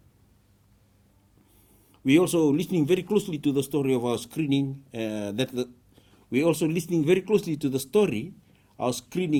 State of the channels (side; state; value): both; identical; correlation 1.00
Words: We also listening very closely to the story of our screening. Our